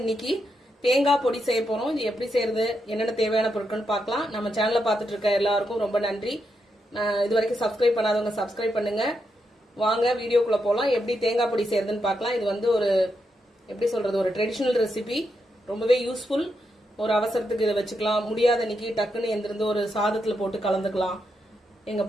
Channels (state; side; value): normal; both; correlation 0.83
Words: தேங்காய் பொடி செய்ய போறோம். இது எப்படி செய்யறது, என்னென்ன தேவையான பொருட்கள் பார்க்கலாம். நம்ம சேனலை பார்த்துட்டு இருக்க எல்லாருக்கும் ரொம்ப நன்றி. இது வரைக்கும் சப்ஸ்கிரைப் பண்ணாதவங்க சப்ஸ்கிரைப் பண்ணுங்க. வாங்க வீடியோக்குள்ள போலாம். எப்படி தேங்காய் பொடி செய்யறதுன்னு பார்க்கலாம். இது வந்து ஒரு எப்படி சொல்றது, ஒரு ட்ரெடிஷனல் ரெசிபி, ரொம்பவே யூஸ்ஃபுல். ஒரு அவசரத்துக்கு இதை வச்சுக்கலாம். முடியாத அன்னைக்கு டக்குன்னு எந்திருந்து ஒரு சாதத்துல போட்டு கலந்துக்கலாம். எங்க